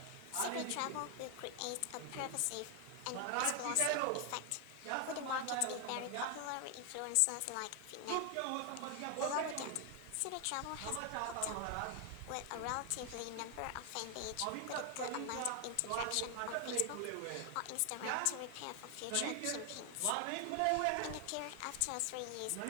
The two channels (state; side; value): different; both; correlation 0.00